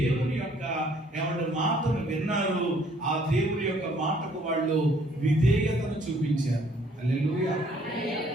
యొక్క ఎవరి మాటను విన్నారు. ఆ దేవుని యొక్క మాటకు వాళ్ళు విధేయతను చూపించారు. హల్లెలూయా.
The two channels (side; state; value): both; normal; correlation 0.62